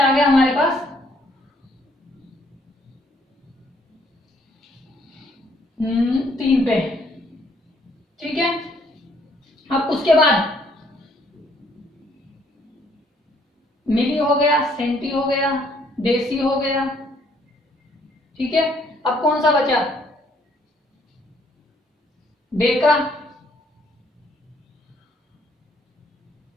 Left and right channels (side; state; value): both; normal; correlation 0.66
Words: गया हमारे पास? 3 पे। ठीक है, अब उसके बाद मिली हो गया, सेंटी हो गया, देसी हो गया। ठीक है, अब कौन सा बचा? डेका।